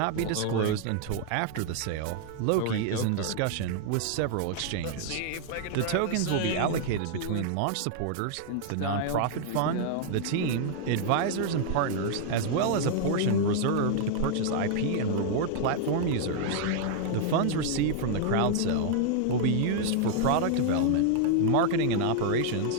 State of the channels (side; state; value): both; different; correlation 0.00